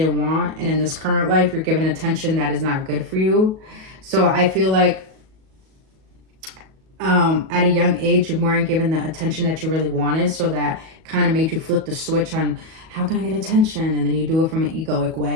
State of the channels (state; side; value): late; left; 37 ms